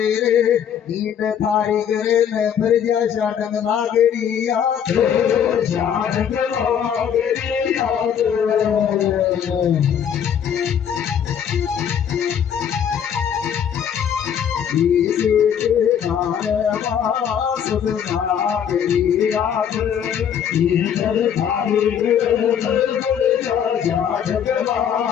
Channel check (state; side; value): quieter; right; 8.5 dB